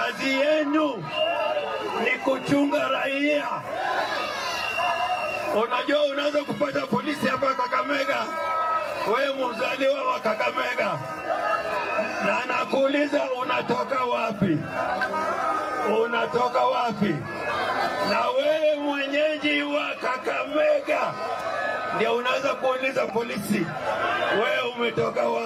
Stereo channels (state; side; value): identical; both; correlation 1.00